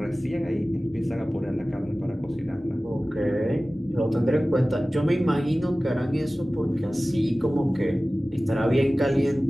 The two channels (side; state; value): both; normal; correlation 0.97